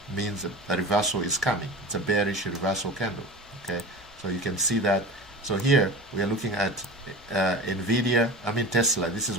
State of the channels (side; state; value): both; normal; correlation 0.32